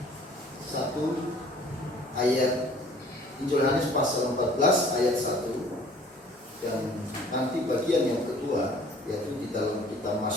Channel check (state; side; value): normal; both; correlation 0.53